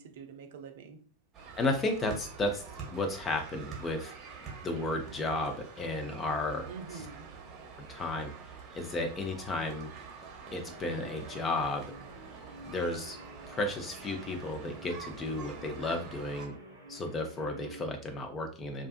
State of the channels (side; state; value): both; normal; correlation 0.40